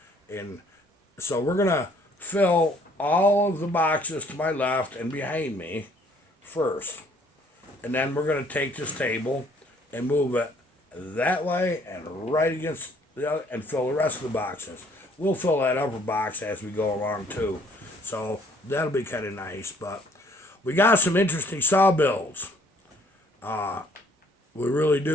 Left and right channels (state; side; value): normal; both; correlation 0.62